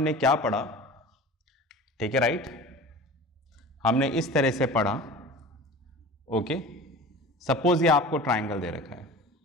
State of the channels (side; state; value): both; normal; correlation 0.38